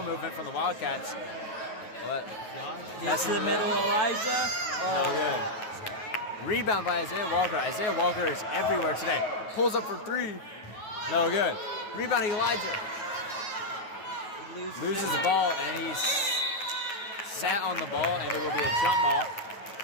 movement from the Wildcats. Gets to the middle, Elijah. No good. Rebound by Isaiah Walker. Isaiah Walker is everywhere today. Pulls up for 3. No good. Rebound Elijah. Loses the ball and he's sat on the ball and it will be a jump ball.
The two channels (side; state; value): right; late; 9.3 ms